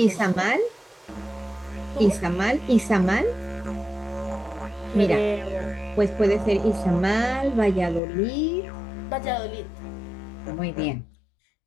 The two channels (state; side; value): drops out; right; at 8.0 s